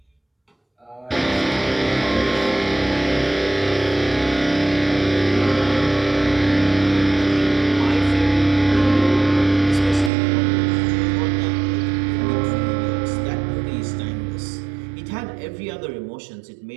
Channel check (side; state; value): left; drops out; at 10.1 s